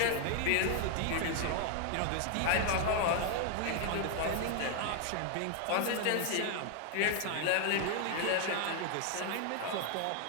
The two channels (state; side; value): different; both; correlation 0.00